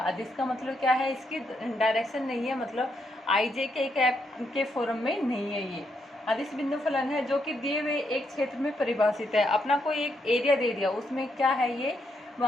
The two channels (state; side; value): normal; both; correlation 0.78